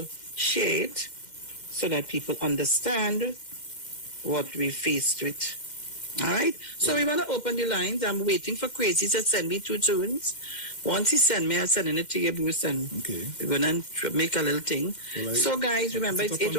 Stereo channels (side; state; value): right; late; 2.1 ms